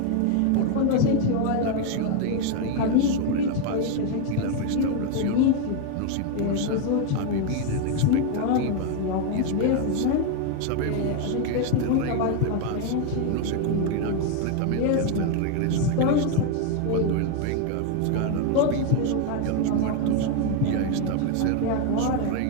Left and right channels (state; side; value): different; both; correlation 0.01